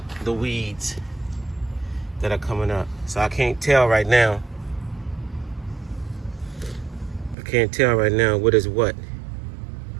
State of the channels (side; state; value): left; drops out; at 7.4 s